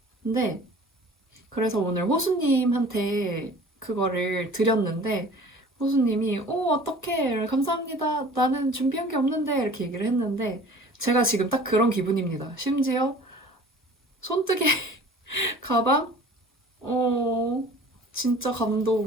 근데 그래서 오늘 호수님한테 그거를 드렸는데 호수님이 어떡해 감사합니다 나는 준비한 게 없는데 이렇게 얘기를 했는데 제가 지금 딱 그런 기분입니다. 심지어 손뜨개 가방? 진짜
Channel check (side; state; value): both; normal; correlation 0.46